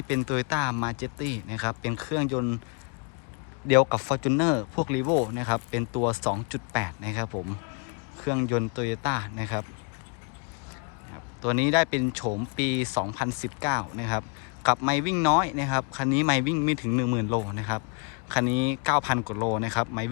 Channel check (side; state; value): right; quieter; 36.9 dB